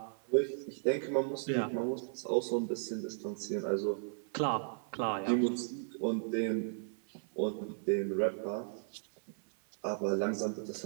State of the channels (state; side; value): silent; left; 54 dB below the other